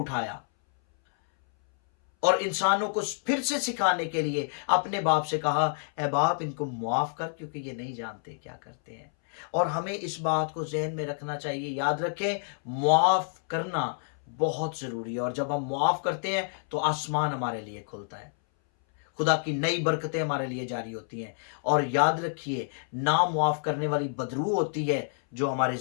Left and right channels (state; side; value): silent; right; 59 dB below the other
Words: और इंसानों को फिर से सिखाने के लिए अपने बाप से कहा, ए बाप इनको मुआफ कर क्योंकि ये नहीं जानते क्या करते हैं। और हमें इस बात को जहन में रखना चाहिए, याद रखें, मुआफ करना बहुत जरूरी है। और जब हम मुआफ करते हैं तो आसमान हमारे लिए खुलता है, खुदा की नई बरकतें हमारे लिए जारी होती हैं। और याद रखिए, ना मुआफ करने वाली बदरू होती है जो हमारे